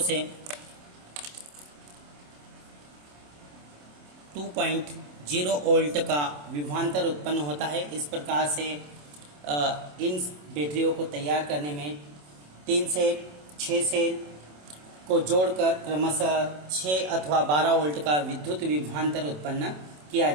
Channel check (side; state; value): left; late; 27 ms